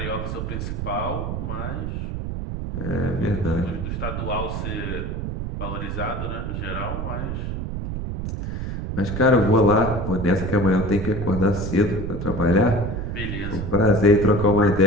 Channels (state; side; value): noise; right; rumble, 4 dB below the sound